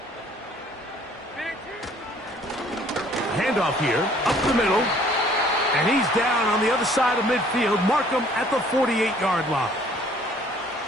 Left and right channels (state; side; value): normal; both; correlation 0.57